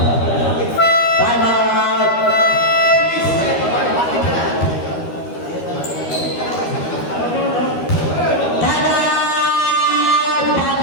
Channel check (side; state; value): right; late; 13 ms